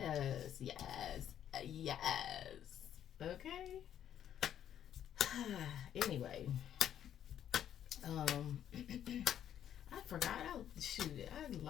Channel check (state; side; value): quieter; right; 10.2 dB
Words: yes, yes. Okay? Anyway, I forgot. I